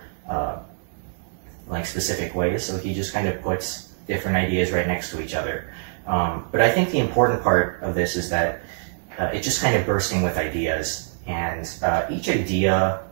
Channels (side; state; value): left; silent; digital silence